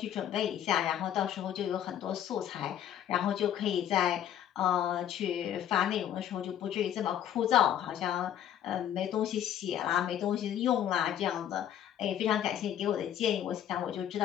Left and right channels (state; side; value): quieter; right; 10.5 dB